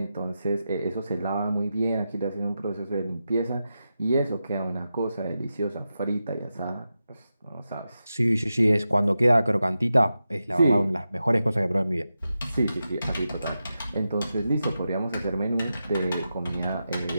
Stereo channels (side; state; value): both; inverted; correlation -0.90